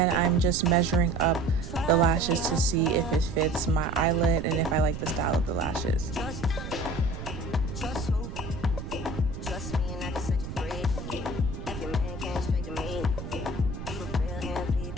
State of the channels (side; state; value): right; noise; rumble, 8 dB below the sound